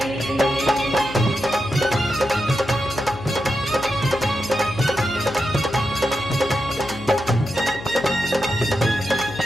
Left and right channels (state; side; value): noise; left; hum, 13 dB below the sound